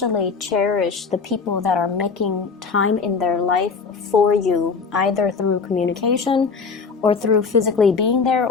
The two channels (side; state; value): right; quieter; 5.1 dB